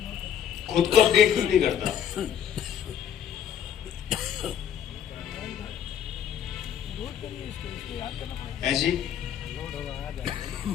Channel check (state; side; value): quieter; right; 9.1 dB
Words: खुद को अपडेट क्यों नहीं करता? ऐसी